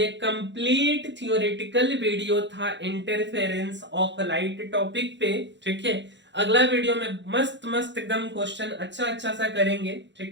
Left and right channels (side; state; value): left; late; 0.52 ms